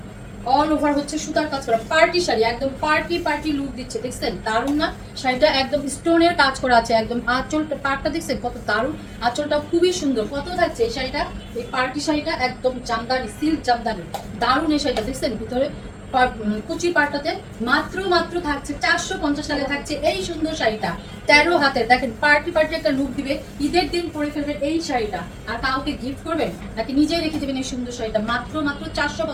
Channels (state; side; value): identical; both; correlation 1.00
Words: অল ওভার হচ্ছে সুতার কাজ করা পার্টি শাড়ি, একদম পার্টি লুক দিচ্ছে। দেখছেন দারুণ না শাড়িটা? একদম স্টোনের কাজ করা আছে, একদম আঁচলটা পাড়টা দেখছেন কত দারুণ, আঁচলটা খুবই সুন্দর। কত থাকছে এই শাড়িটা? এই পার্টি শাড়িটা একদম জামদানি, সিল্ক জামদানি, দারুণ এই শাড়িটা। দেখছেন ভিতরে কুচি পাড়টাতে মাত্র মাত্র থাকছে 450 টাকা থাকছে এই সুন্দর শাড়িটা। 13 হাতের, দেখেন পার্টি একটা লুক দিবে, ঈদের দিন পরে ফেলবেন এই শাড়িটা। আর কাউকে গিফট করবেন নাকি নিজেই রেখে দেবেন এই সুন্দর শাড়িটা। মাত্র